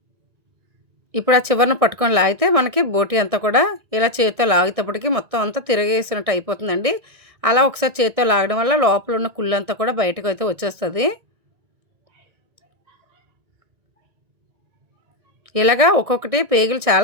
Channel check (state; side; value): late; left; 1.6 ms